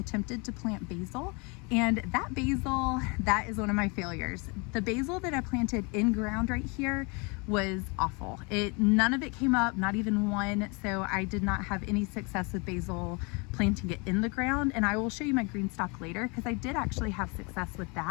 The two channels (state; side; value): quieter; right; 30.3 dB